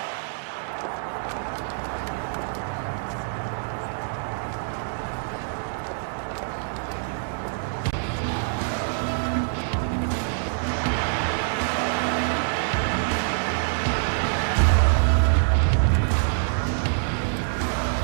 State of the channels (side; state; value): left; silent; digital silence